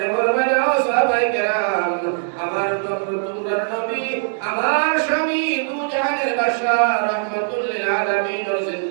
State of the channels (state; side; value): silent; left; digital silence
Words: ফরমাইনা ও সাহাবায়ে কেরাম আমার তোমরা নবী আমার স্বামী দু জাহানের বাদশা রাহমাতুল লিল আলামিন এর